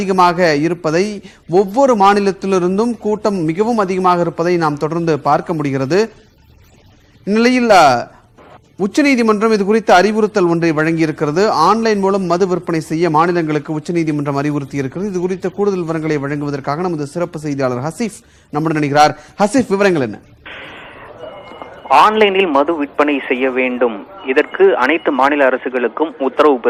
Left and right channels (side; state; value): both; identical; correlation 1.00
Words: இருப்பதை, ஒவ்வொரு மாநிலத்திலிருந்தும் கூட்டம் மிகவும் அதிகமாக இருப்பதை நாம் தொடர்ந்து பார்க்க முடிகிறது. இந்நிலையில் உச்சநீதிமன்றம் இது குறித்த அறிவுறுத்தல் ஒன்றை வழங்கியிருக்கிறது. ஆன்லைன் மூலம் மது விற்பனை செய்ய மாநிலங்களுக்கு உச்சநீதிமன்றம் அறிவுறுத்தி இருக்கிறது. இது குறித்த கூடுதல் விவரங்களை வழங்குவதற்காக நமது சிறப்பு செய்தியாளர் ஹசீஃப் நம்முடன் இணைகிறார். ஹசீஃப், விவரங்கள் என்ன? ஆன்லைனில் மது விற்பனை செய்ய வேண்டும், இதற்கு அனைத்து மாநில அரசுகளுக்கும் உத்தரவு